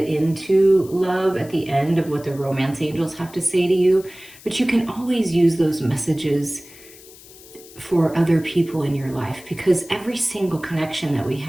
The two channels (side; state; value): left; noise; hiss, 21 dB below the sound